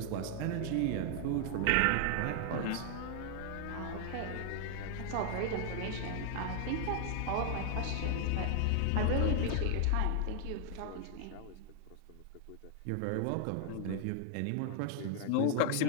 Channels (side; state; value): both; different; correlation 0.00